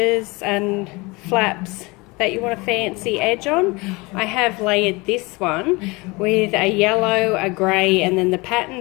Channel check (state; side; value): quieter; right; 25.0 dB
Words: and flaps that you want a fancy edge on. I have layered this one with a yellow, a grey, and then the